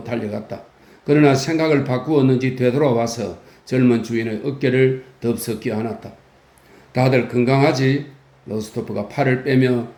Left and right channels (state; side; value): identical; both; correlation 1.00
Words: 달려갔다. 그러나 생각을 바꾸었는지 되돌아와서 젊은 주인의 어깨를 덥석 껴안았다. 다들 건강하지? 로스토프가 팔을 빼며